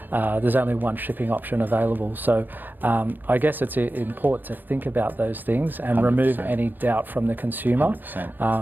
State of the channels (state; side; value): late; left; 0.092 ms